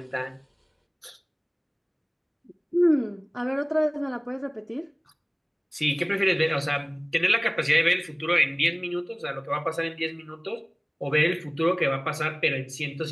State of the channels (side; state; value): both; identical; correlation 1.00